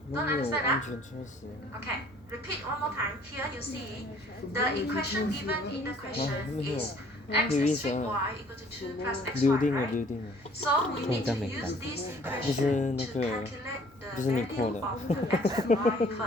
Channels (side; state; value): both; normal; correlation 0.56